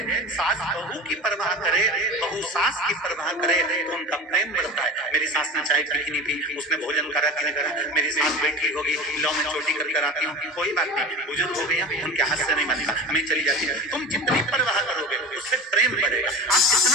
सास बहू की परवाह करे, बहू सास की परवाह करे तो उनका प्रेम बढ़ता है। मेरी सास ने चाय पी कि नहीं पी, उसने भोजन करा कि नहीं करा, मेरी सास बैठी होगी, लो मैं चोटी कर आती हूँ, कोई बात नहीं, बुजुर्ग हो गए, उनके हाथ से नहीं बनता, मैं चली जाती हूँ। तुम जितनी परवाह करोगे उससे प्रेम बढ़ेगा। आप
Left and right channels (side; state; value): both; normal; correlation 0.32